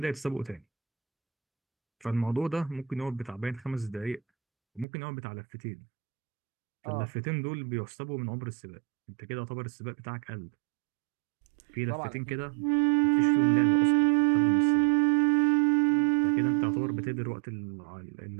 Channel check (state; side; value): drops out; left; at 4.9 s